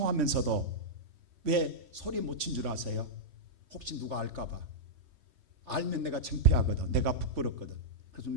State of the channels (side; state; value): left; late; 3.1 ms